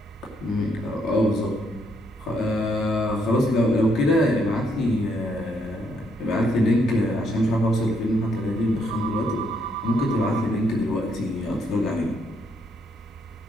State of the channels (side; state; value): both; normal; correlation 0.74